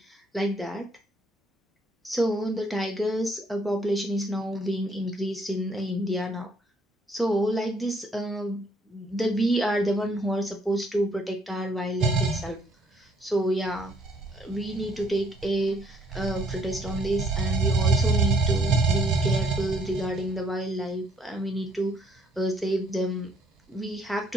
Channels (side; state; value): both; normal; correlation 0.66